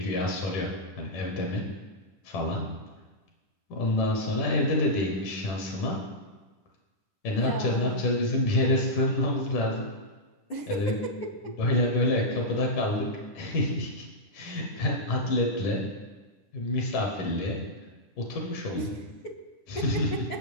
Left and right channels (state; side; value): late; right; 10 ms